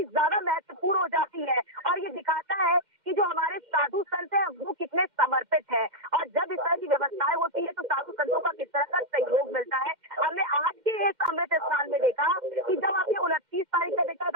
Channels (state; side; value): late; left; 2.1 ms